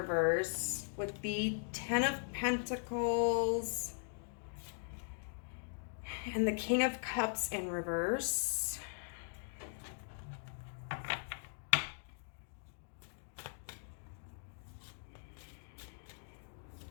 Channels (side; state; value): right; silent; digital silence